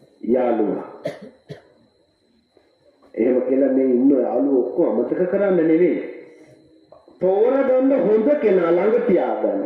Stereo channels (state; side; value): identical; both; correlation 1.00